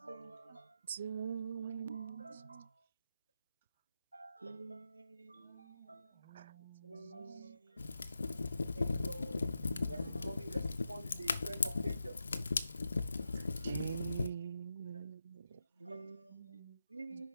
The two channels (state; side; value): inverted; both; correlation -0.88